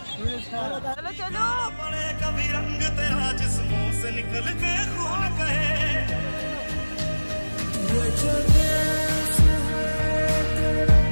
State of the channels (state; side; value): inverted; both; correlation -1.00